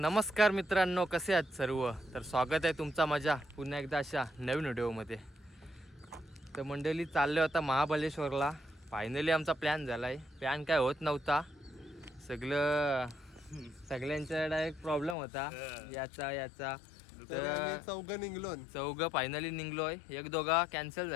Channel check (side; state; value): right; drops out; at 15.2 s